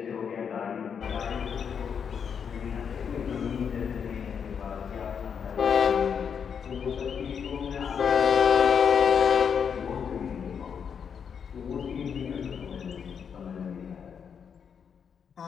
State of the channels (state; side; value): quieter; right; 7.1 dB